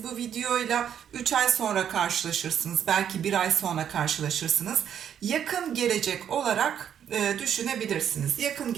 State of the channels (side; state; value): left; quieter; 9.1 dB